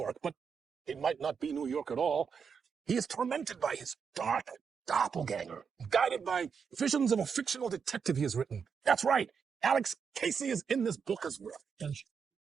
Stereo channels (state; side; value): quieter; left; 6.3 dB